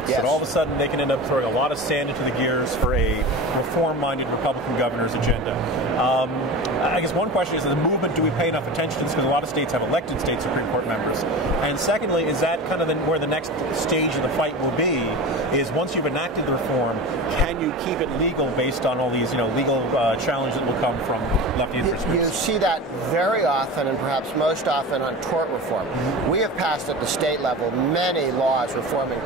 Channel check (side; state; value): both; normal; correlation 0.30